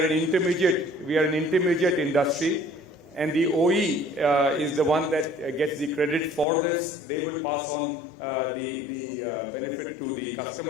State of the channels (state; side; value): drops out; right; at 6.5 s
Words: an intermediate industry, and the OE is the one that gets the credit for this. They will pass on the benefit to the